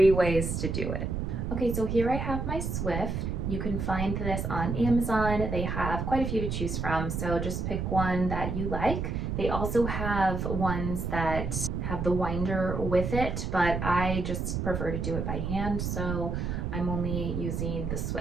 ways to do it. Okay, so here I have my Swift. You can find this on Amazon. They have quite a few to choose from, so just pick one that you like. They also have ones that have the winder with it, but I just prefer to do it by hand, so I'm only using the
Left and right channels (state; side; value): noise; right; rumble, 2 dB below the sound